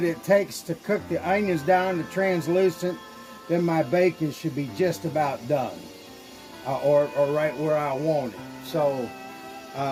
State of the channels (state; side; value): identical; both; correlation 1.00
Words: it takes to cook the onions down to translucent, then my bacon should be just about done, or right where I want it. So,